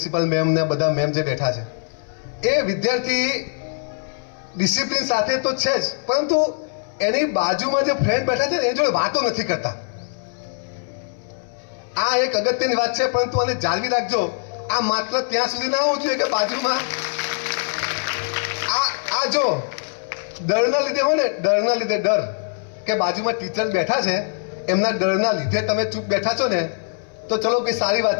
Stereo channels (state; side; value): silent; right; 61 dB below the other